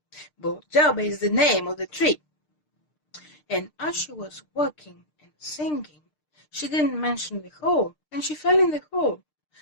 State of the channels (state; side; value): late; right; 6.6 ms